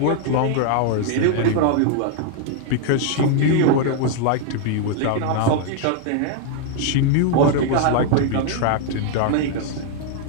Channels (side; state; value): both; different; correlation 0.00